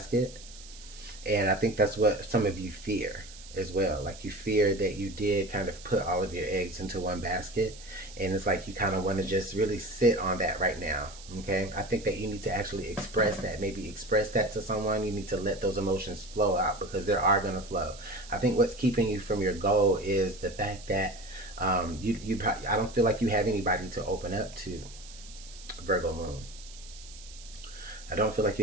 And I think that's what some of you fear as well. Like, you fear that you did kind of put all of your eggs into one basket, and it's like you kind of want to just really sit on that right now. Okay, I think that you need to actually express that. Maybe express that to someone. You need to let those emotions flow out, because they are going to flow. I think what's keeping you from your goal is the fact that I don't feel like you have anybody to open up to, Virgo moon. I don't feel like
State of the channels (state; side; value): noise; right; hiss, 18 dB below the sound